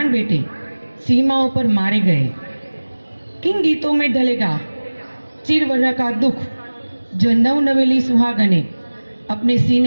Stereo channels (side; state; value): both; inverted; correlation -1.00